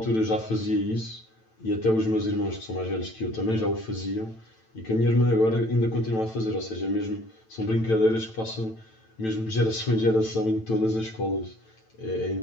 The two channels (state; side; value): late; right; 9.0 ms